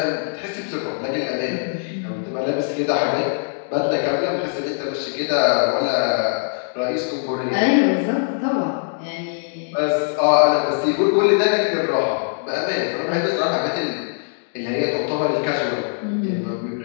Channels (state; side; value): silent; right; digital silence